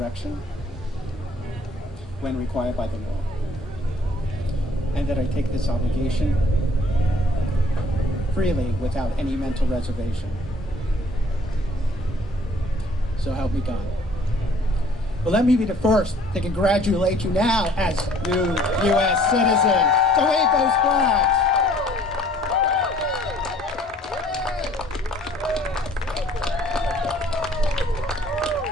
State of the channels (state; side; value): normal; both; correlation 0.57